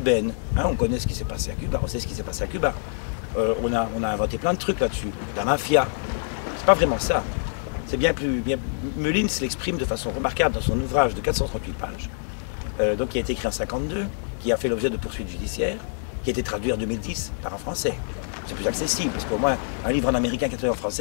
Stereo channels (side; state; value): right; silent; digital silence